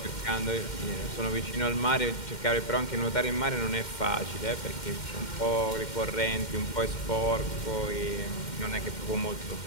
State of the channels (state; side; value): late; right; 2.1 ms